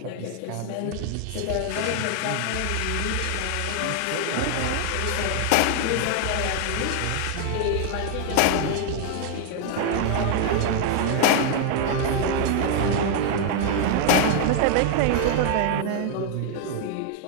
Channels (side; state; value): both; different; correlation 0.00